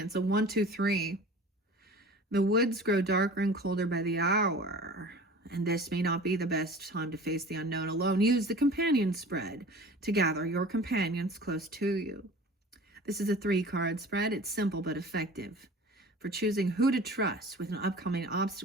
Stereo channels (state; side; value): normal; both; correlation 0.41